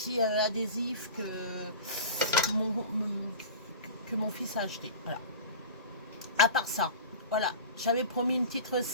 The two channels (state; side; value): inverted; both; correlation -0.34